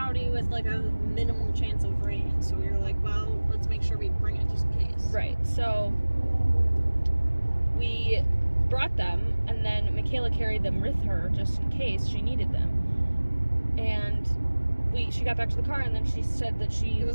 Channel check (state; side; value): inverted; both; correlation -1.00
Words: with like a minimal chance of rain, so we were like, well, let's make sure we bring it just in case. Right, so we brought them, and then Michaela carried them with her just in case she needed them. And she got back to the car, and then she said that it